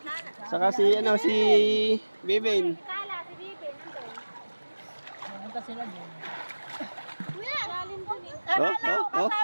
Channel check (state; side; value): inverted; both; correlation -1.00